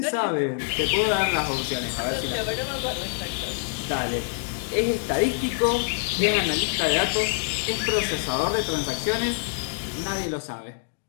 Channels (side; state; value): right; silent; digital silence